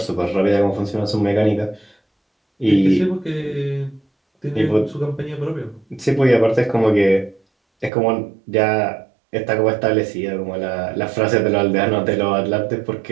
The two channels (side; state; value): left; drops out; at 7.9 s